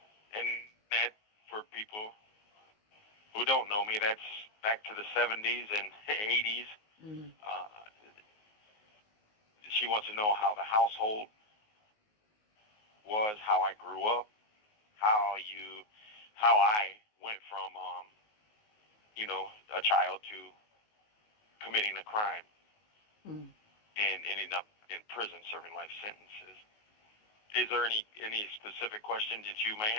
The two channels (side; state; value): right; late; 19 ms